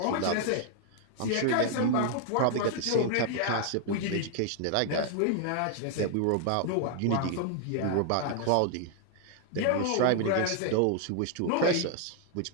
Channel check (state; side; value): different; both; correlation 0.00